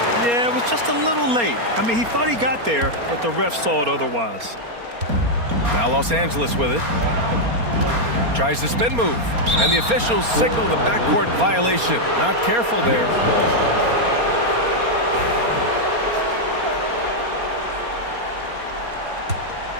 Yeah, it was just a little late. I mean, he thought he got there, but the ref saw it otherwise. Now Los Angeles with it. Tries the spin move. And the officials signal the backcourt violation. Not careful there.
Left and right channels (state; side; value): late; left; 4.3 ms